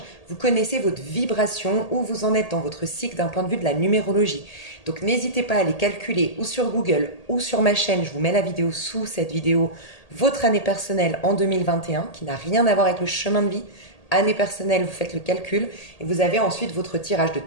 vous connaissez votre vibration, où vous en êtes dans votre cycle d'un point de vue de la numérologie. Donc n'hésitez pas à aller calculer ou sur Google ou sur ma chaîne, je vous mets la vidéo sous cette vidéo, votre année personnelle en 2021, qui n'a rien à voir avec le chemin de vie. Année personnelle, vous faites le calcul et vous avez ensuite votre tirage de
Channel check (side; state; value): right; late; 1.8 ms